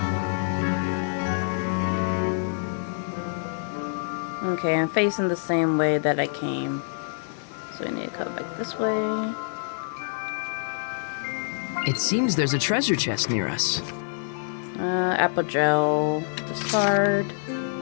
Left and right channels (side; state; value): right; silent; digital silence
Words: Okay, I'm facing the same way that I came. So we need to cut back this way. It seems there's a treasure chest near us. Apple gel. Discard.